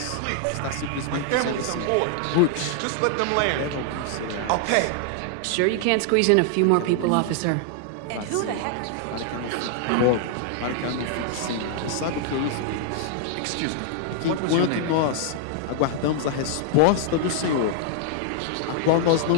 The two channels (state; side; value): different; both; correlation -0.01